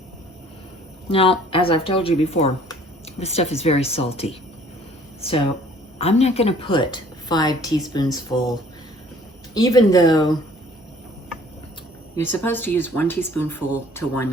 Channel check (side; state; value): both; normal; correlation 0.55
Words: Now, as I've told you before, this stuff is very salty, so I'm not going to put 5 teaspoons full, even though you're supposed to use 1 teaspoonful to